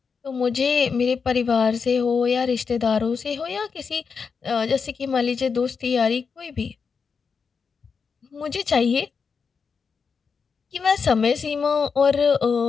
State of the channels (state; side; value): quieter; right; 5.6 dB